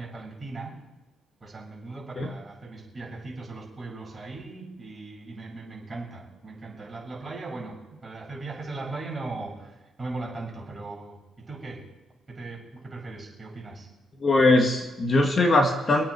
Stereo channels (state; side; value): normal; both; correlation 0.80